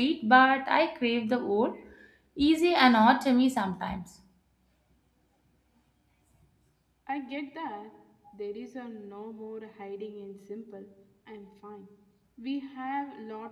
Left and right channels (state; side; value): identical; both; correlation 1.00